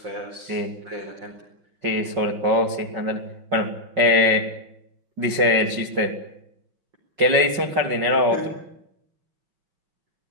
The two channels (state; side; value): late; left; 5.4 ms